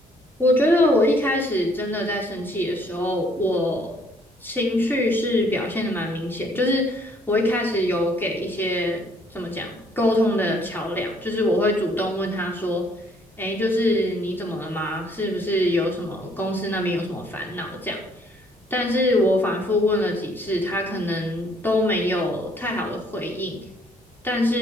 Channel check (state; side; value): normal; both; correlation 0.64